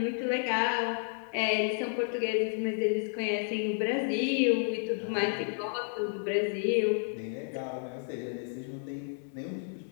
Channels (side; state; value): right; silent; digital silence